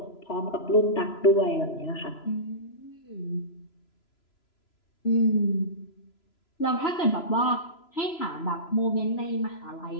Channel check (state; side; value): late; right; 3.0 ms